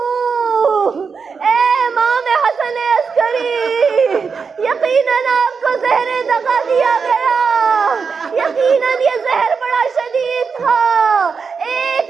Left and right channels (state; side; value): quieter; left; 5.5 dB